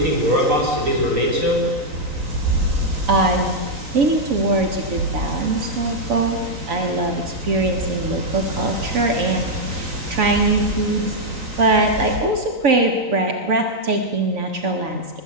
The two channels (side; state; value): left; late; 3.9 ms